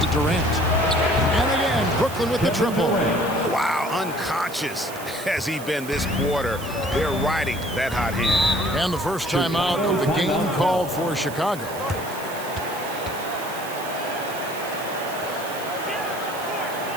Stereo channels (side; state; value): right; noise; hiss, 14 dB below the sound